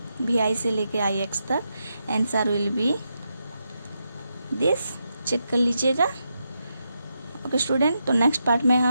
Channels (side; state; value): both; inverted; correlation -0.84